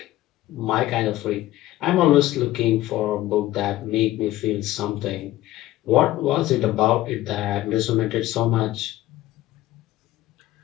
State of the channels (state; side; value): quieter; right; 15.9 dB